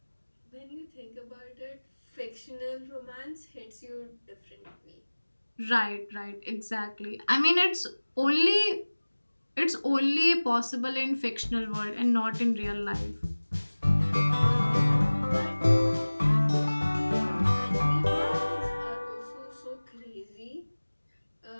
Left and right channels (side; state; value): both; inverted; correlation -1.00